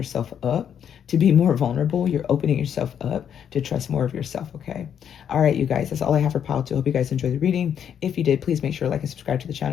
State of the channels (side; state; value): right; quieter; 8.6 dB